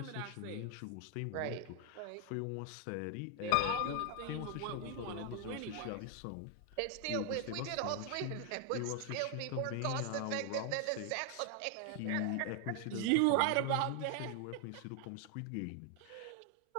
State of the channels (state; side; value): different; both; correlation 0.00